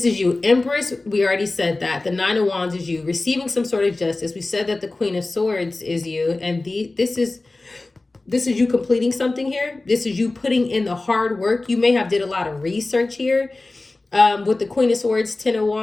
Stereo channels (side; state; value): right; quieter; 3.1 dB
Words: is you. Empress, we already said that. The 9 of Wands is you. Receiving some sort of justice. We said that the Queen of Swords is you. And this is you completing something here. This is you putting in the hard work. You may have did a lot of research here with the Queen of Swords, 10 of